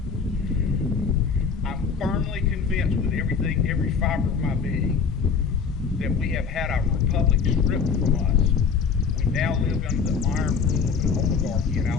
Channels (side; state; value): right; quieter; 5.8 dB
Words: I'm firmly convinced with every fiber of my being, that we have had our republic stripped from us. We now live under the iron rule of an oligarchy in